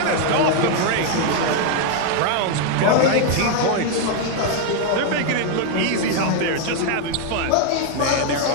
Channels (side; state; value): both; different; correlation 0.00